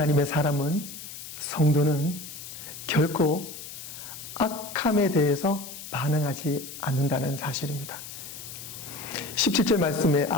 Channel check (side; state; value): left; noise; hiss, 12 dB below the sound